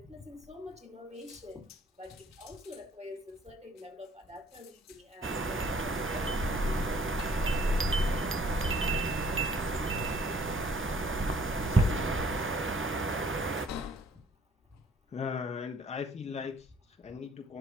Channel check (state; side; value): normal; both; correlation 0.59